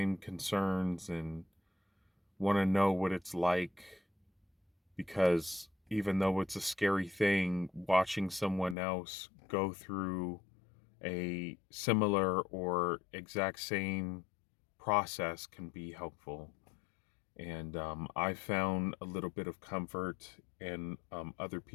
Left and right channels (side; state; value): right; drops out; at 8.8 s